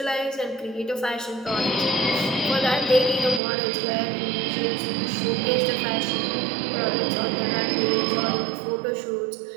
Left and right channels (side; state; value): left; drops out; at 3.4 s